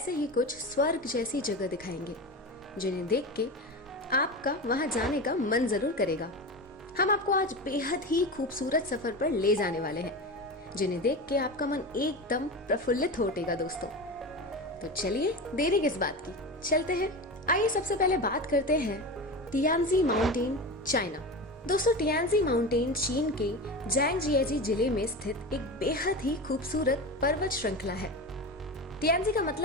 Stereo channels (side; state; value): both; normal; correlation 0.25